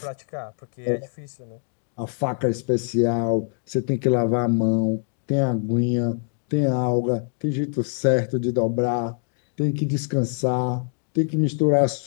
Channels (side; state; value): right; silent; digital silence